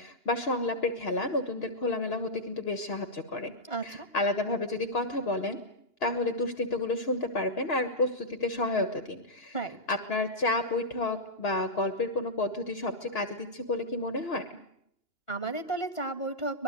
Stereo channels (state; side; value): late; right; 2.9 ms